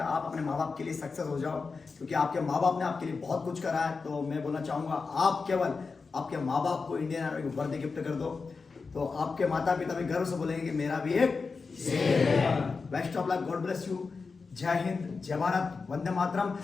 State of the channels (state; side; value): quieter; right; 4.6 dB